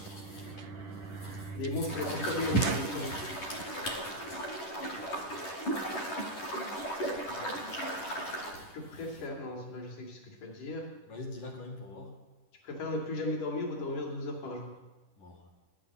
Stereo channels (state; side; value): late; right; 10 ms